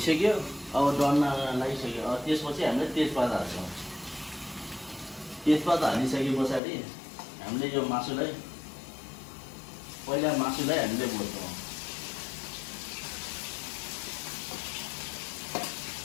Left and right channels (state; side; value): drops out; right; at 6.6 s